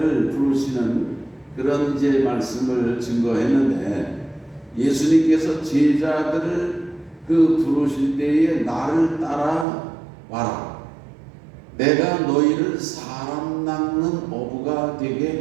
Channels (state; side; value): drops out; left; at 9.7 s